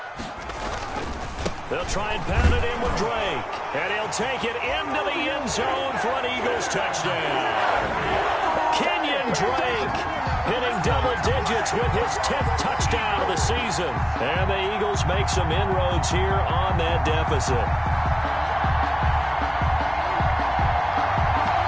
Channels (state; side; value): identical; both; correlation 1.00